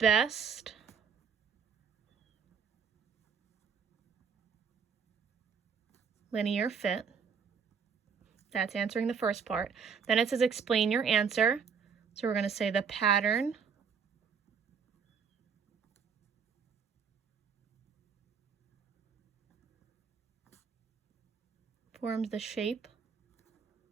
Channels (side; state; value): left; quieter; 6.3 dB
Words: linear fit. That's answering the first part. Then it says explain your answer. So we're going to say the pattern forms the shape